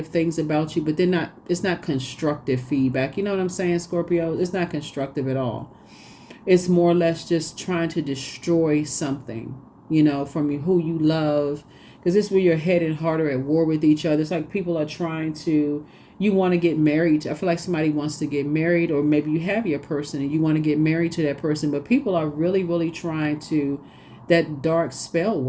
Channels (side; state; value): both; identical; correlation 1.00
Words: things about you, but it's not constructive feedback. You know what I'm saying, Scorpio? It's not constructive at all. It's more or less just trying to destroy something, from you, who you love. Because this is where your head and heart are at war with each other. It's like people are trying to, you want to get married. I feel like somebody wants to get married, or maybe you have your person and you want to get married to that person, but people are really, really trying to that dark spell